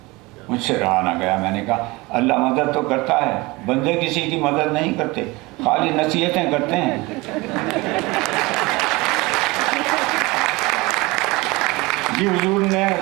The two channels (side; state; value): left; quieter; 23.1 dB